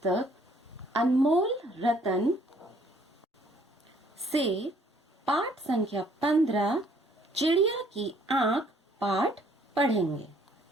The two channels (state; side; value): normal; both; correlation 0.62